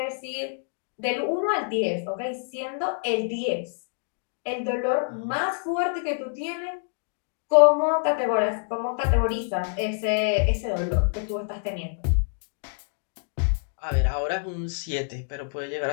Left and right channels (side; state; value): right; silent; digital silence